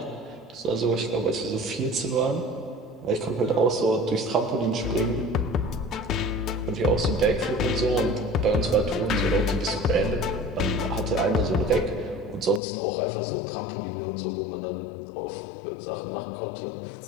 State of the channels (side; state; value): right; drops out; at 12.6 s